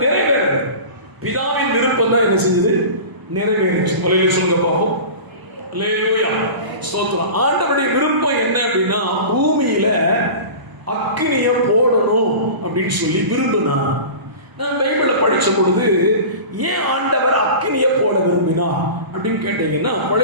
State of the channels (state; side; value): late; left; 1.0 ms